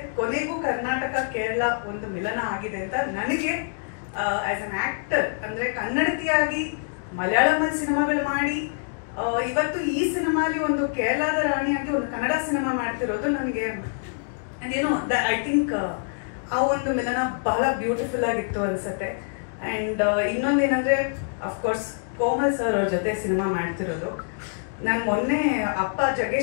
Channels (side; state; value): right; silent; digital silence